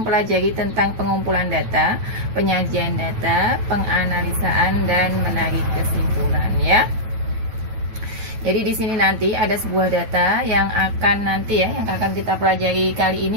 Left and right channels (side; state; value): left; late; 9.1 ms